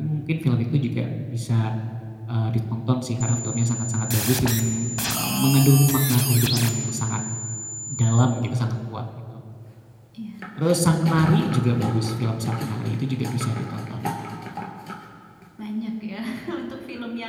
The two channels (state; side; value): identical; both; correlation 1.00